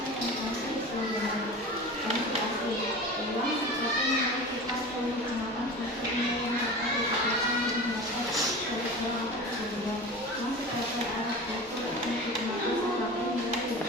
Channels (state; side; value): normal; both; correlation 0.33